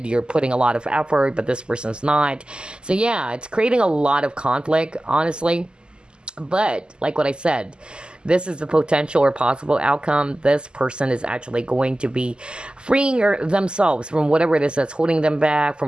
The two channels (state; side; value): late; left; 0.048 ms